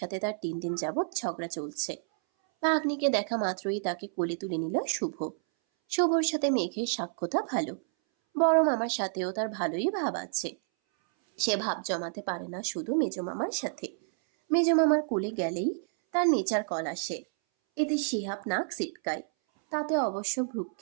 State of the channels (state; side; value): silent; left; 58 dB below the other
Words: তার 3 দিন যাবৎ ঝগড়া চলছে। ভাগ্নিকে দেখা মাত্রই তাকে কোলে তুলে নিল শুভ। শুভর সাথে মেঘের সাক্ষ্যতা ভালো। বড় মামার সাথেও তার ভালোই ভাব আছে। সে ভাব জমাতে পারে না শুধু মেজো মামার সাথে। মেজো মামার কোলে গেলেই তার নেচার কল আসে। এতে শিহাব নাক সিটকায়। তাতে অবশ্য